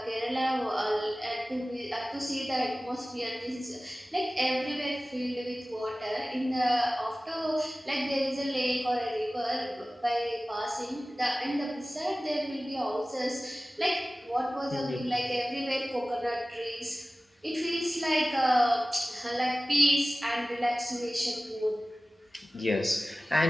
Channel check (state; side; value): normal; both; correlation 0.97